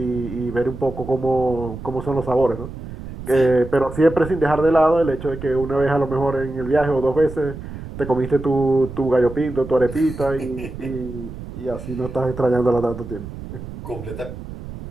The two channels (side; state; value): right; noise; rumble, 11 dB below the sound